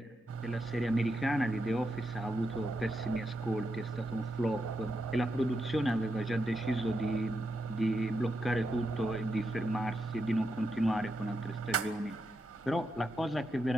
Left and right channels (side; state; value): both; normal; correlation 0.85